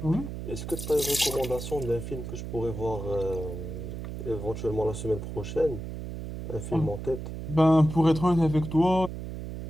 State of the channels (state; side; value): noise; right; hum, 8 dB below the sound